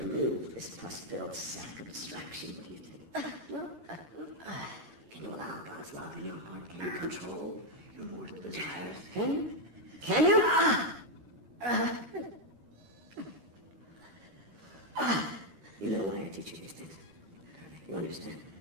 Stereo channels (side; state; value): left; late; 13 ms